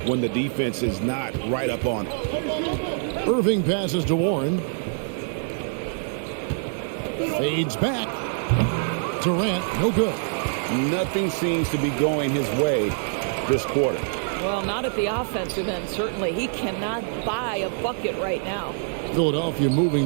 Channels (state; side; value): silent; left; digital silence